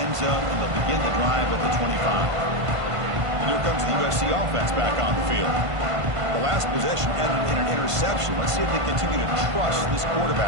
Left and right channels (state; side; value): late; left; 1.5 ms